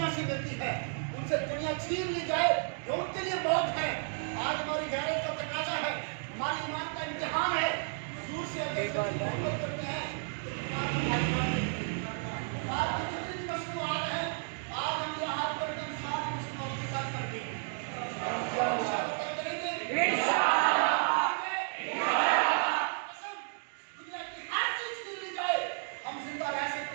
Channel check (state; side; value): silent; left; 56 dB below the other